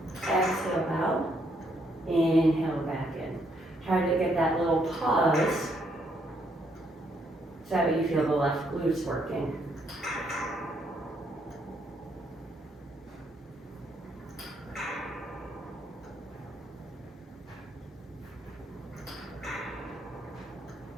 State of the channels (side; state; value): both; normal; correlation 0.73